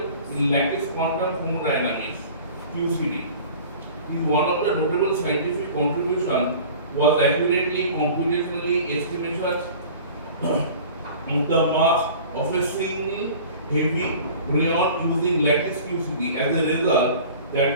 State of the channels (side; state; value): both; inverted; correlation -0.43